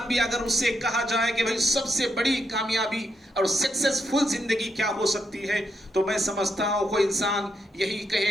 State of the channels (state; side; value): normal; both; correlation 0.81